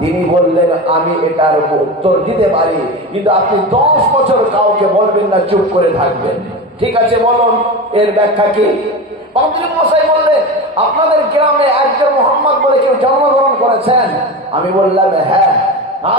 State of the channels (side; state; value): both; normal; correlation 0.25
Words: তিনি বললেন, আমি এটার উত্তর দিতে পারি, কিন্তু আপনি 10 বছর কাউকে বলবেন না, চুপ করে থাকবেন। ঠিক আছে, বলুন এর ব্যাখ্যা কি? পাদ্রী মশাই বললেন, আপনাদের গ্রামে একজন মোহাম্মদ বলে কেউ জন্মগ্রহণ করেছেন? আমি বললাম হ্যাঁ।